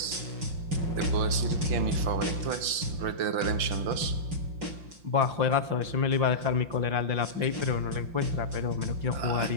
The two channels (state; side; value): late; left; 5.8 ms